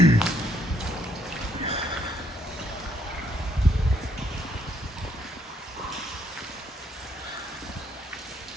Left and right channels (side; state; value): both; normal; correlation 0.70